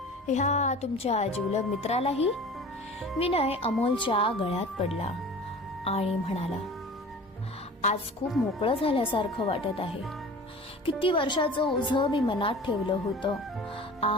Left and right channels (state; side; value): normal; both; correlation 0.40